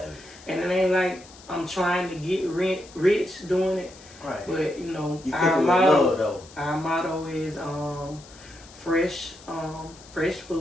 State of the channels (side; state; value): left; noise; hiss, 21 dB below the sound